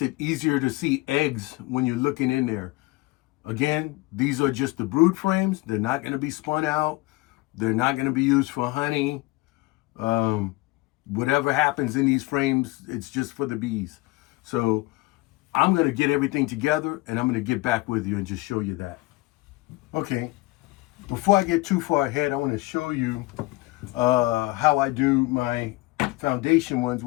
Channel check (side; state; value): right; quieter; 20.7 dB